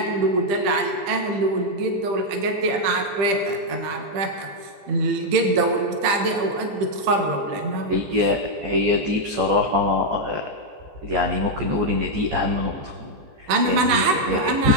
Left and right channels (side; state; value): left; late; 15 ms